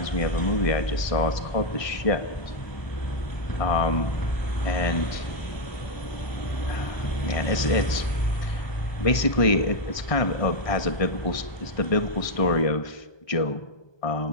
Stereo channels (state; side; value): late; right; 1.2 ms